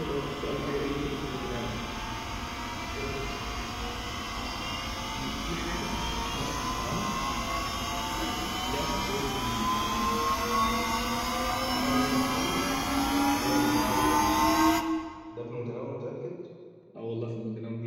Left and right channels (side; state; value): both; identical; correlation 1.00